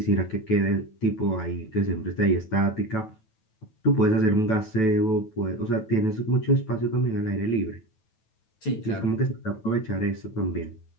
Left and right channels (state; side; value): late; right; 9.2 ms